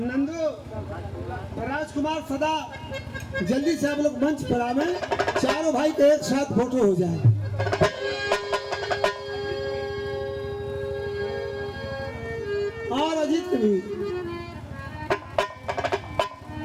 राजकुमार सदा जल्दी से आप लोग मंच पर आवे, चारों भाई के एक साथ फोटो हो जाए। और अजीत को भी,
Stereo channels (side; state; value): both; identical; correlation 1.00